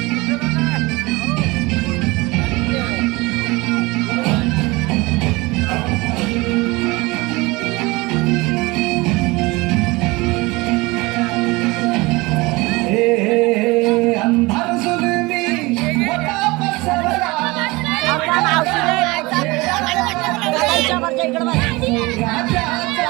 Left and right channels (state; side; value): quieter; left; 23.0 dB